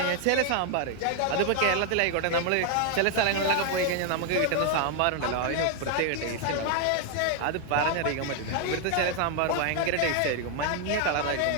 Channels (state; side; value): different; both; correlation 0.00